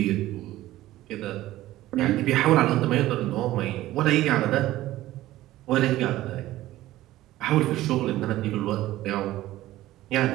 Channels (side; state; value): left; quieter; 15.6 dB